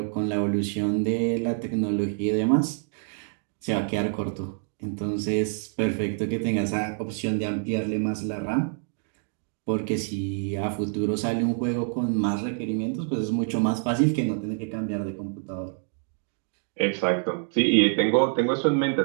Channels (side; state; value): left; silent; 60 dB below the other